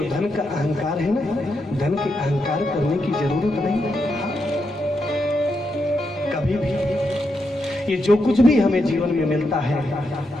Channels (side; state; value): both; normal; correlation 0.83